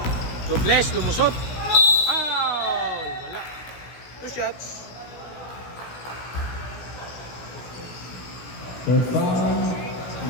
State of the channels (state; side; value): late; right; 16 ms